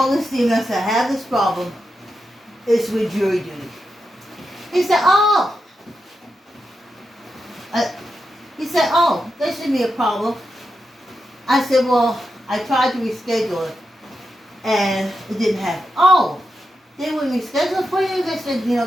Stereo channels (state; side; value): normal; both; correlation 0.87